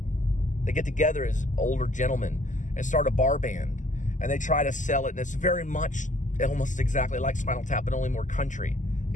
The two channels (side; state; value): right; late; 0.37 ms